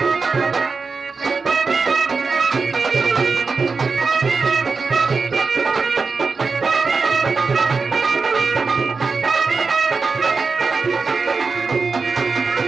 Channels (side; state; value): left; quieter; 4.5 dB